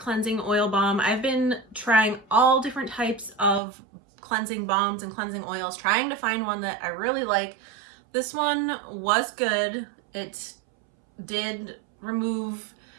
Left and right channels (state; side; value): drops out; left; at 3.6 s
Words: Oil Balm. I've been trying all different types of cleansing balms and cleansing oils, trying to find one that I really like. This one was good. It did remove